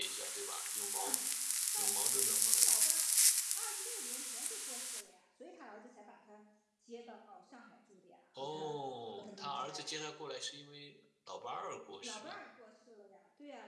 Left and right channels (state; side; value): identical; both; correlation 1.00